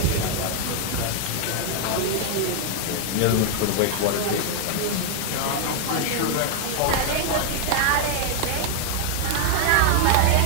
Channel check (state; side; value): different; both; correlation 0.00